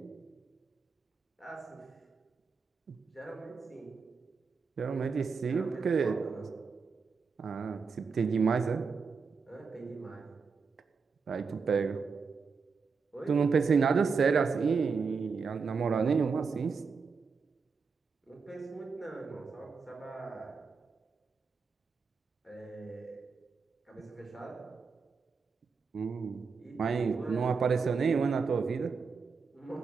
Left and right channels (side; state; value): left; quieter; 5.2 dB